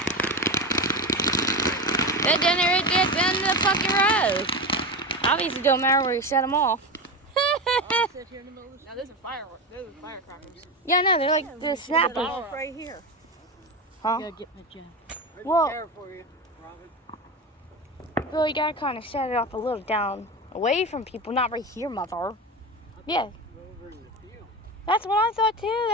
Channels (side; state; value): both; normal; correlation 0.21